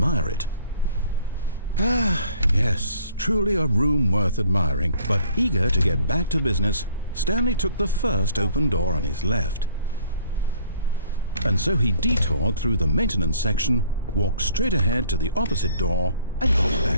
it. Ah, yes, truly a room worth admiring. But eager to get back to business, Stanley took the first open door on his left. And so he detoured through the maintenance section, walked straight ahead to the opposite door, and got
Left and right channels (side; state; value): both; inverted; correlation -0.58